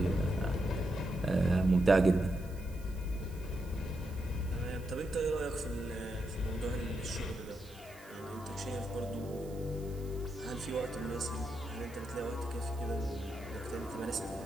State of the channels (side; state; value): right; noise; hiss, 22 dB below the sound